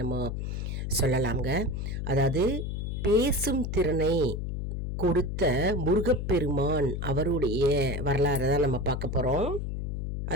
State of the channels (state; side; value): noise; left; hum, 3 dB below the sound